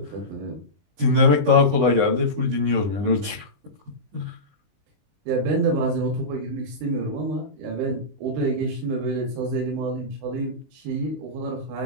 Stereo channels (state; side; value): late; left; 20 ms